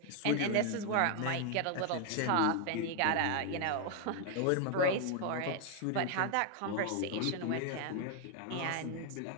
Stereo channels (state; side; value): different; both; correlation 0.01